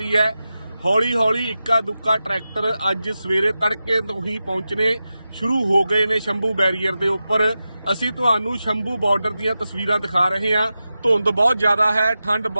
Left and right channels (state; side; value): inverted; both; correlation -0.92